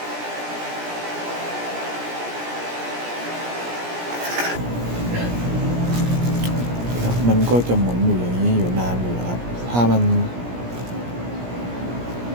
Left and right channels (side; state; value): left; late; 17 ms